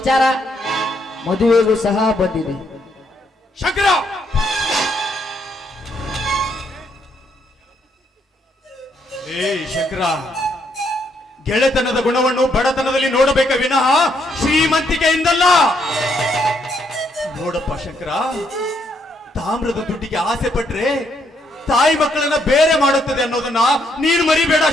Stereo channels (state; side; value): normal; both; correlation 0.74